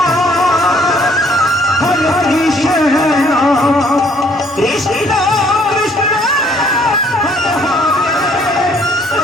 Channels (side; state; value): both; normal; correlation 0.62